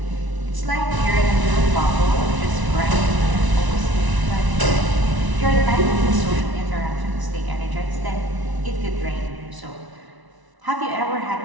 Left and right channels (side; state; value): left; late; 1.0 ms